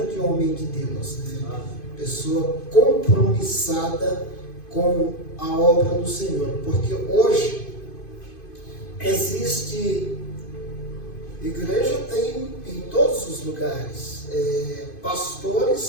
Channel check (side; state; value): right; late; 2.5 ms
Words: homem de Deus, né? Pessoa compromissada com a obra do Senhor, porque hoje existe igreja, tem em todos os lugares,